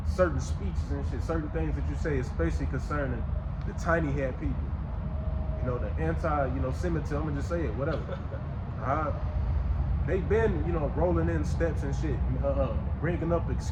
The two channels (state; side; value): identical; both; correlation 1.00